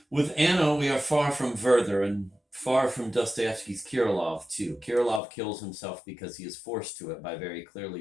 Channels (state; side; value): drops out; right; at 5.2 s